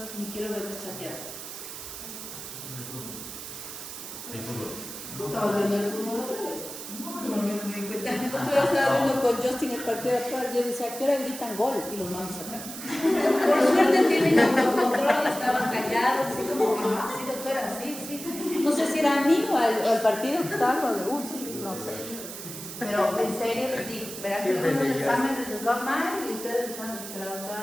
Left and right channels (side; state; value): right; noise; hiss, 10 dB below the sound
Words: ni quiero verlos chatear. estamos viendo el fútbol otra vez. No me di cuenta. Yo estaba viendo con Justin el partido de atrás. Yo decía, ¿a qué hora gritan gol? Y los mandos acá. Por suerte tienen autocontrol, estaban callados, así como, sí, doctora, sí, sí. No sé si era a mí o al partido que estaba, sí, no sé. Pero en serio les digo, verán que los exámenes les va mal y ustedes les van a decir, la